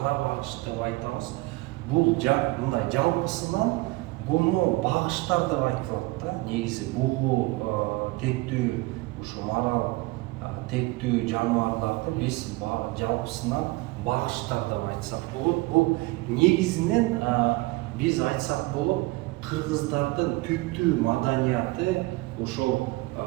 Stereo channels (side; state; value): left; quieter; 21.8 dB